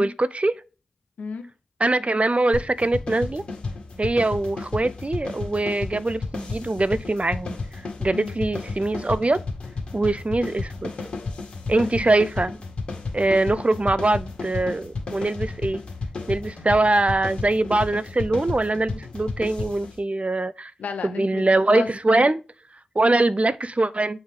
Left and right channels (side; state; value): both; normal; correlation 0.92